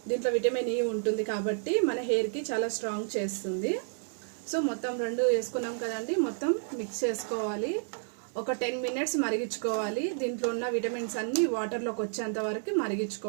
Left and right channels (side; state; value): left; silent; digital silence